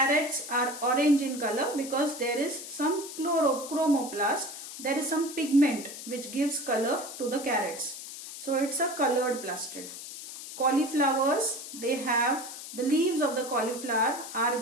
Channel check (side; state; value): left; noise; hiss, 11 dB below the sound